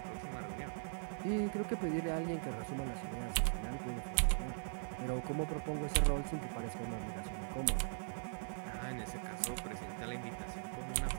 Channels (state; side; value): silent; left; 51 dB below the other